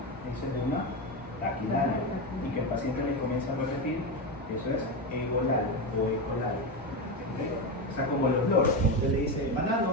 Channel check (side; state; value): both; normal; correlation 0.14